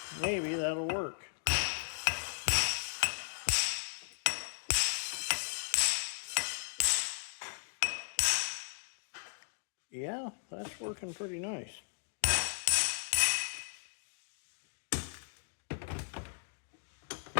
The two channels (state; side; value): silent; right; digital silence